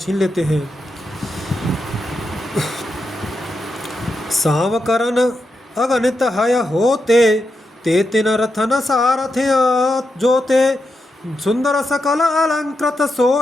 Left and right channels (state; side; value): normal; both; correlation 0.86